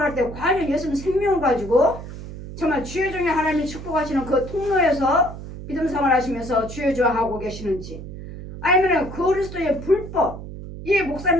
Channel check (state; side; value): noise; right; hum, 11 dB below the sound